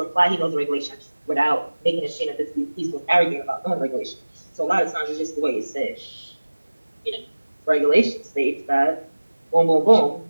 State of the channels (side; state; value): both; inverted; correlation -1.00